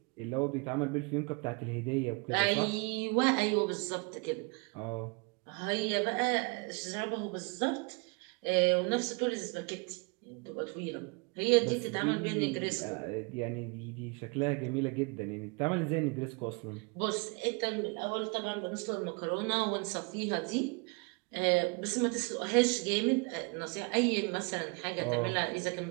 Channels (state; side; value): quieter; left; 31.6 dB